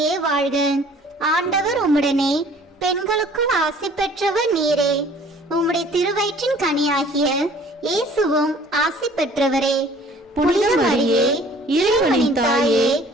வாழ்க, ஆண்டவர் உம்முடனே, பெண்களுக்குள் ஆசி பெற்றவர் நீரே. உம்முடைய திருவயிற்றின் கனியாகிய இயேசுவும் ஆசி பெற்றவரே. புனித மரியே, இறைவனின் தாயே,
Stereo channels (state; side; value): normal; both; correlation 0.52